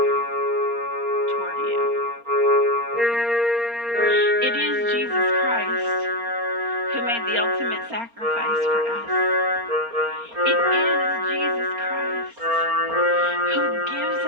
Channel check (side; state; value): left; late; 4.3 ms